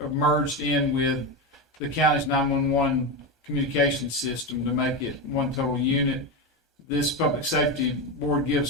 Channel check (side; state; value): both; normal; correlation 0.15